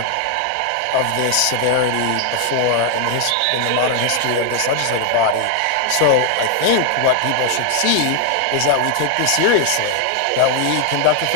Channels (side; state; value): both; different; correlation 0.00